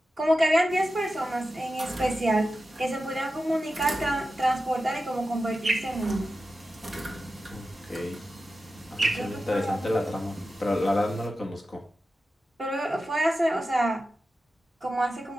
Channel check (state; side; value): normal; both; correlation 0.92